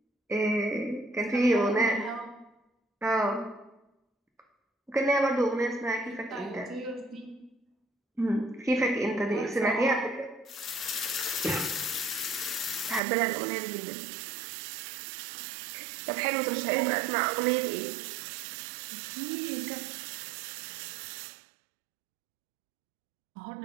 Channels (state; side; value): drops out; left; at 13.0 s